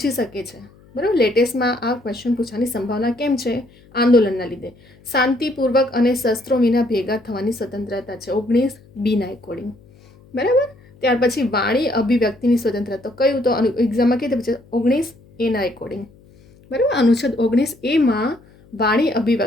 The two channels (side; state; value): left; noise; hum, 27 dB below the sound